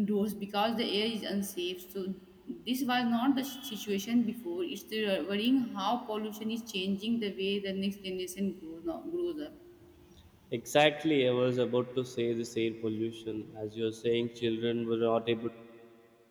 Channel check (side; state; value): both; identical; correlation 1.00